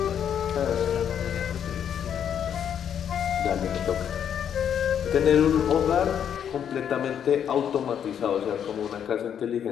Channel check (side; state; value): right; quieter; 8.8 dB